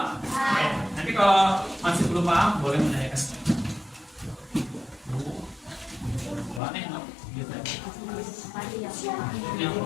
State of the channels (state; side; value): drops out; right; at 6.6 s